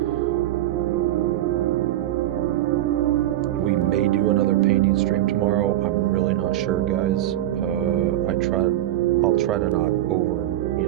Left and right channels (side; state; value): left; quieter; 13.8 dB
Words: We may do another painting stream tomorrow. I'm really not sure, guys. I'll try to not over,